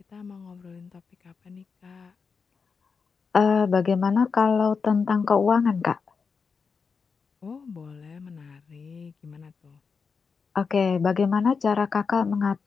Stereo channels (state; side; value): quieter; right; 5.4 dB